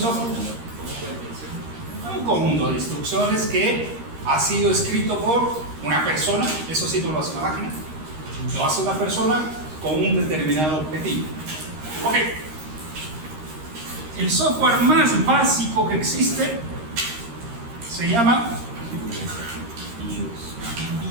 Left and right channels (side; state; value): left; late; 13 ms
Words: Un conjunto de instrucciones que ha sido escrito por una persona, eso sí no lo hace una máquina, lo hace una persona con un determinado objetivo. Ok. El software más básico que existe se llama